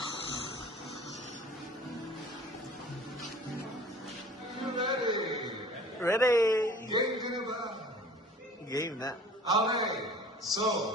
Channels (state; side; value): normal; both; correlation 0.46